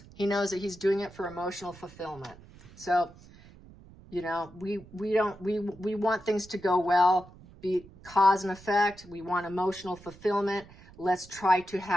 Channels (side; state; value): right; noise; rumble, 21 dB below the sound